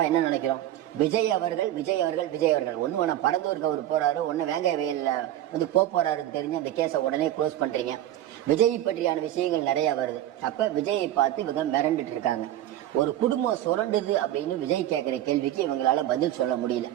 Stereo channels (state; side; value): quieter; left; 12.9 dB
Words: என்ன நினைக்கிறோம், விஜய் அவர்கள் ஒண்ணு வேணா பரந்தூருக்கு அவர் போறாரு, ஒன்னு வேங்காய வயல்ல போறாருன்னு தெரிஞ்சு அந்த கேஸை உடனே க்ளோஸ் பண்றீங்க. விஜய் பற்றியான விஷயங்கள் நிறைய வருது. அப்ப விஜயை பார்த்து இவங்க மிரண்டுட்டு இருக்காங்க. ஒரு குடும்பம் சுரண்டுது அப்படின்னு விஜய் கேட்கிற கேள்விக்கு இவங்களால பதில் சொல்ல முடியல.